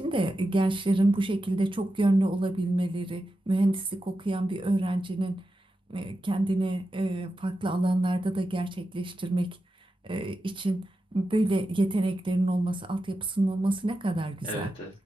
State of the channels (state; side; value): normal; both; correlation 0.90